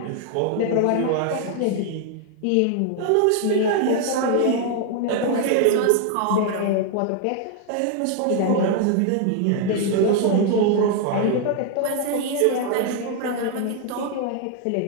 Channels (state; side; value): different; both; correlation 0.00